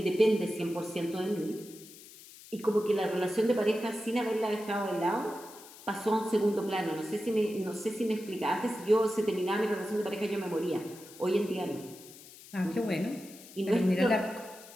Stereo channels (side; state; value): left; noise; hiss, 19 dB below the sound